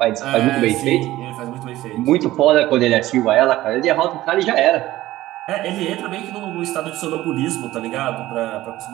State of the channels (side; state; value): left; quieter; 15.9 dB